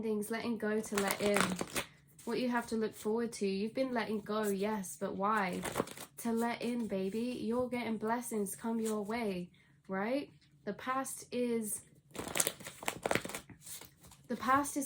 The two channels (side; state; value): both; identical; correlation 1.00